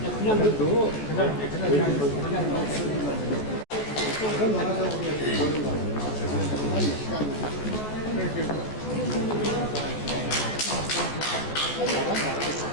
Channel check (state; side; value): late; right; 14 ms